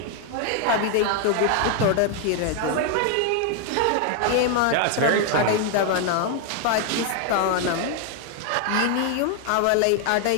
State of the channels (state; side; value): different; both; correlation 0.00